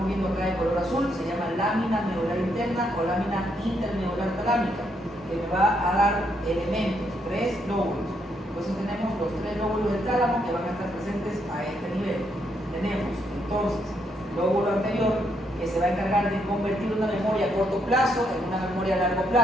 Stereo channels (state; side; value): normal; both; correlation 0.76